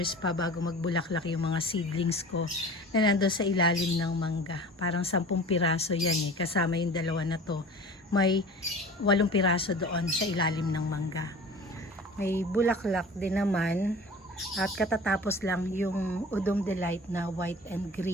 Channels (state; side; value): normal; both; correlation 0.40